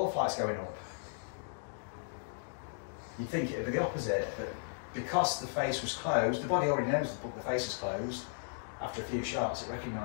flight's going up. You'd think it would be the opposite, but because the face was closed, the body already knows the face is closed. After a few shots, it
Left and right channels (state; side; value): silent; right; digital silence